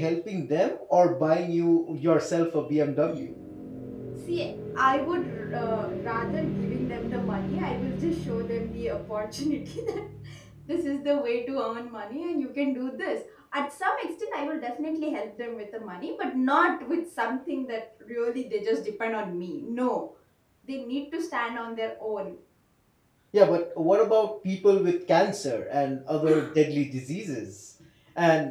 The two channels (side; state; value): both; identical; correlation 1.00